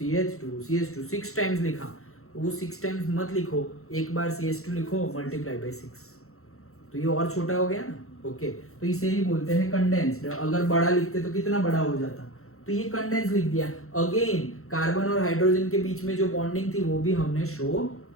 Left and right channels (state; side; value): late; right; 0.63 ms